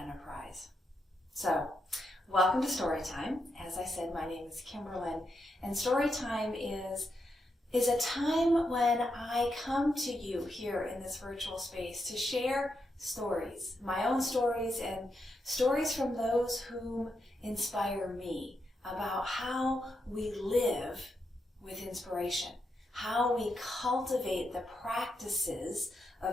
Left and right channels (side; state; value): both; normal; correlation 0.83